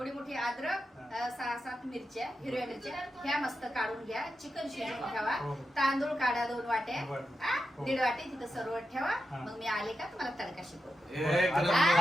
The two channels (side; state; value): both; normal; correlation 0.89